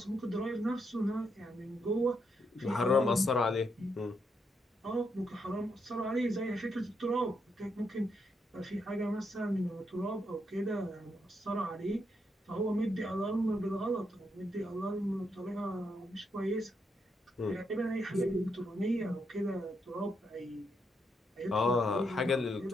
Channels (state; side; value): normal; both; correlation 0.79